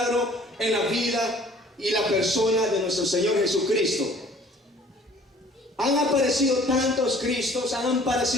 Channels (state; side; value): normal; both; correlation 0.53